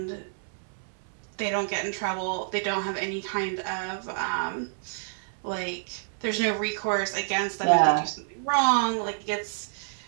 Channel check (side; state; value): left; silent; 57 dB below the other